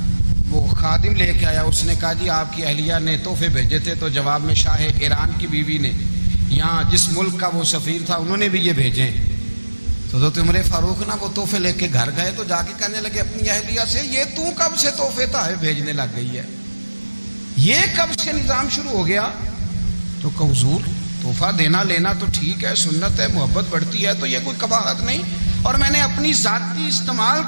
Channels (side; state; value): both; inverted; correlation -1.00